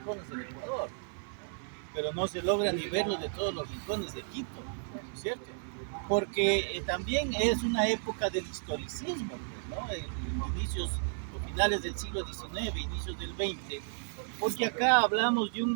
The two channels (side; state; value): left; silent; digital silence